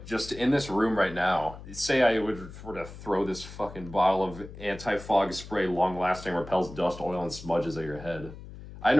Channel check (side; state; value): left; noise; hum, 14 dB below the sound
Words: just in this room right now. Say I were to throw this fucking bottle of anti-fog spray, long-lasting, repels dust, oil, and smudges at your head. I